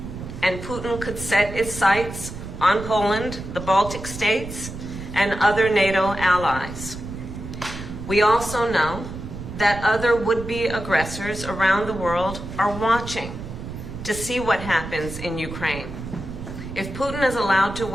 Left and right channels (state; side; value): noise; right; rumble, 10 dB below the sound